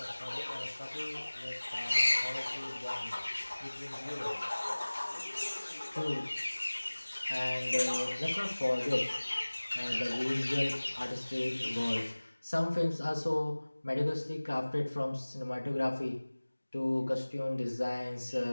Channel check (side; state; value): both; inverted; correlation -1.00